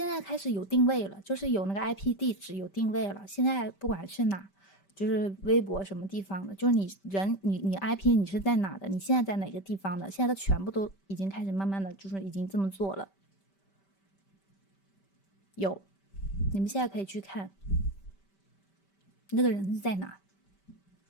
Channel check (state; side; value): late; right; 5.1 ms